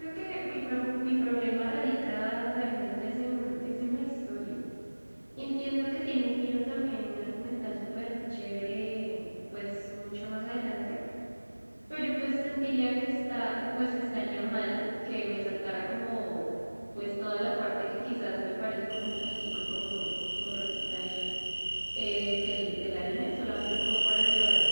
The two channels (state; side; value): inverted; both; correlation -1.00